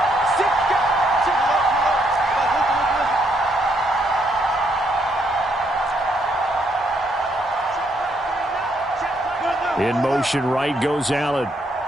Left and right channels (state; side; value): normal; both; correlation 0.73